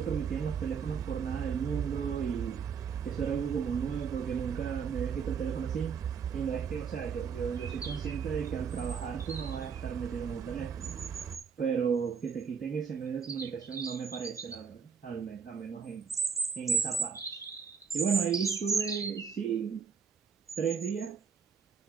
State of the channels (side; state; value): left; quieter; 6.4 dB